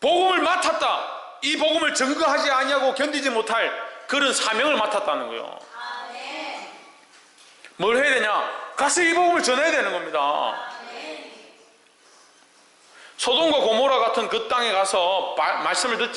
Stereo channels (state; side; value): identical; both; correlation 1.00